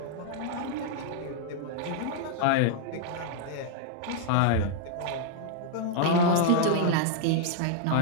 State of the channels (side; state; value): both; different; correlation -0.01